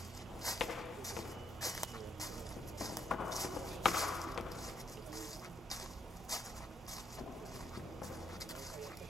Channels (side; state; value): both; normal; correlation 0.76